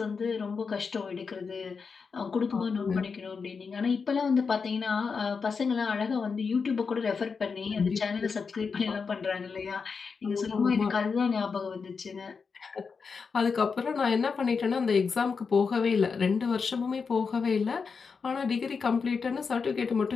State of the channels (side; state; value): right; quieter; 5.3 dB